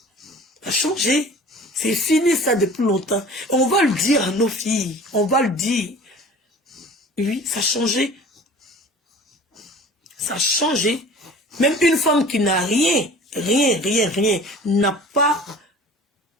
Ça a changé. C'est fini ça depuis longtemps. On va le dire à nos filles. On va le dire. Oui, ça a changé. Ça a changé. Même une femme qui n'a rien, n'a pas,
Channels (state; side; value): normal; both; correlation 0.43